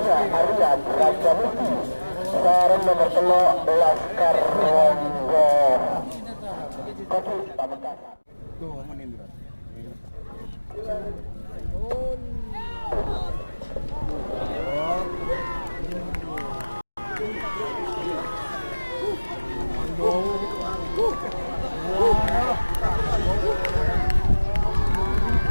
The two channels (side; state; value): both; inverted; correlation -1.00